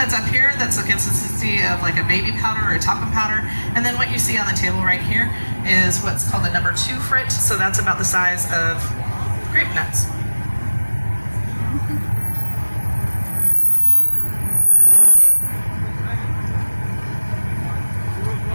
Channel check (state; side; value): inverted; both; correlation -1.00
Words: up here that's the consistency of like a baby powder or a talcum powder, and then what you see on the table right here is what's called the number 2 frit, so that's about the size of grape nuts.